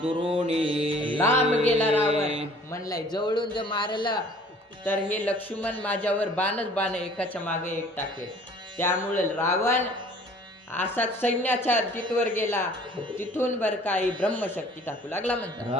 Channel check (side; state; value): both; normal; correlation 0.52